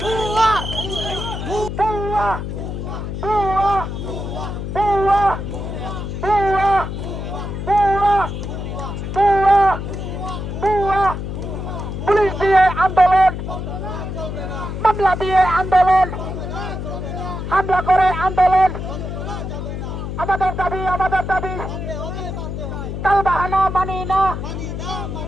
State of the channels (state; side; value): noise; left; hum, 5 dB below the sound